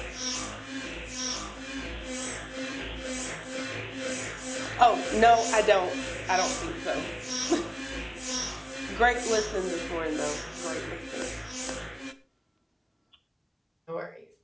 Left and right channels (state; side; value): identical; both; correlation 1.00